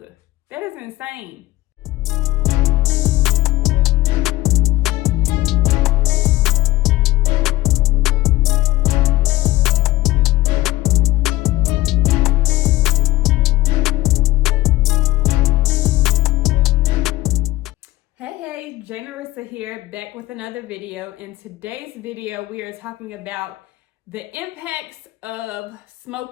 That is insane. Hey, Jay Narissa here, back with another video. In today's video, we are talking about the impacts of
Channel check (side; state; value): right; quieter; 17.4 dB